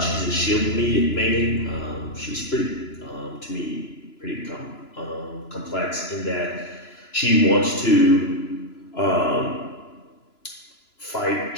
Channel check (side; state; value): right; late; 3.0 ms